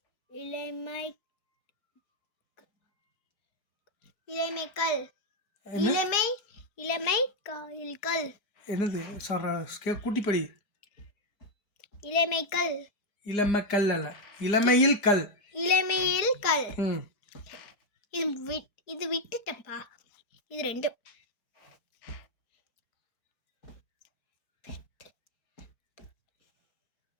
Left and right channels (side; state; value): right; late; 4.9 ms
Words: இளமை இளமைக்கல் இளமை இளமை கல். என்னது சொல்ற? கூட்டி படி. இளமைக்கல். இளமக்கல் அல்ல, இளமையில் கல். இளமையில் கல். இது விட்டுட்டப்பா. இது ரெண்டும்.